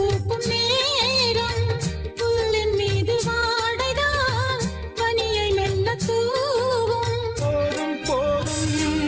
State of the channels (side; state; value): both; identical; correlation 1.00